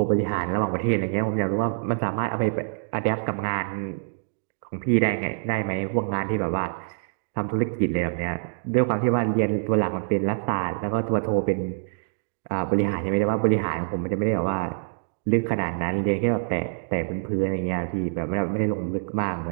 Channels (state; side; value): silent; left; digital silence